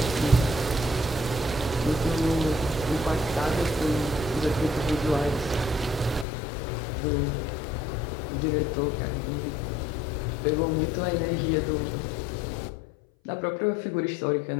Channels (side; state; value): right; drops out; at 6.2 s